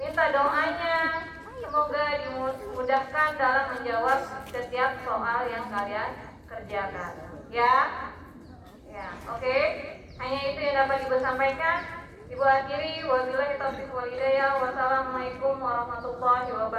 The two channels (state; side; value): identical; both; correlation 1.00